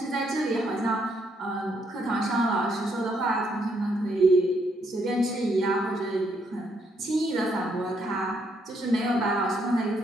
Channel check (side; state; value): both; normal; correlation 0.73